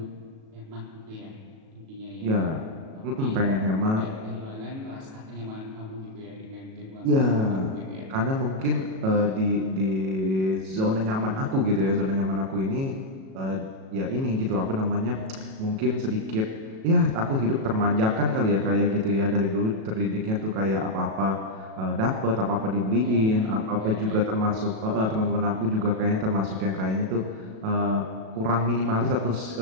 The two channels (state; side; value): late; left; 37 ms